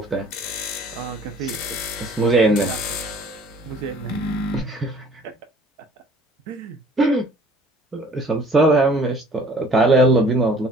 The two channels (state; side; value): normal; both; correlation 0.53